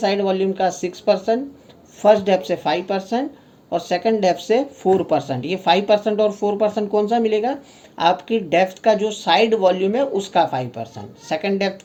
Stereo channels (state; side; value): identical; both; correlation 1.00